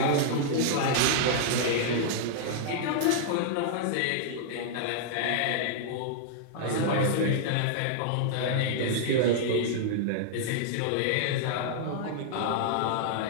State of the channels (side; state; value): both; different; correlation -0.01